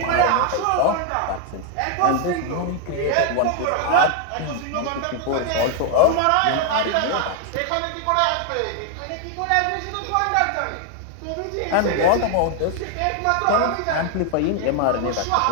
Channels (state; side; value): different; both; correlation 0.00